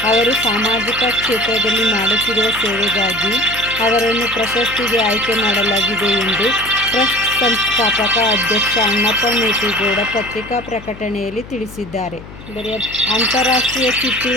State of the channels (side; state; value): left; noise; hum, 16 dB below the sound